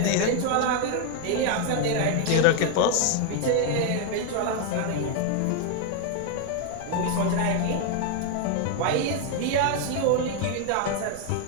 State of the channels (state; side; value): different; both; correlation 0.01